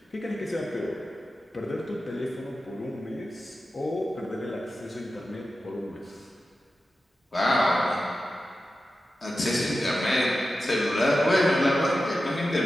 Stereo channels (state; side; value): normal; both; correlation 0.92